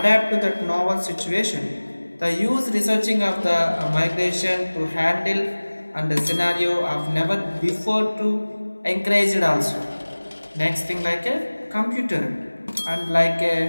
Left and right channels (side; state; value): both; inverted; correlation -1.00